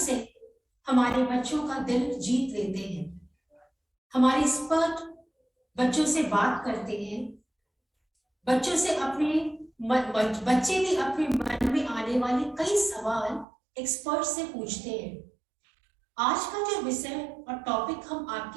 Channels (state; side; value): drops out; left; at 13.5 s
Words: हमारे बच्चों का दिल जीत लेते हैं। हमारे एक्सपर्ट बच्चों से बात करते हैं, बच्चों से बच्चे भी अपने मन में आने वाले कई सवाल एक्सपर्ट से पूछते हैं। आज का जो विषय और टॉपिक हम